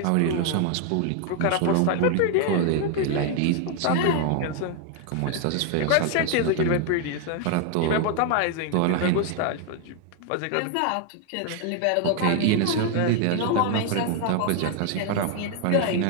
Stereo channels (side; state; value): both; different; correlation 0.00